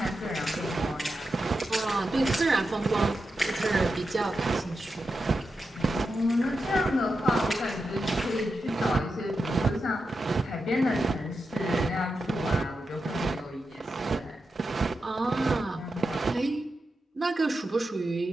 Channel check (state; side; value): normal; both; correlation 0.89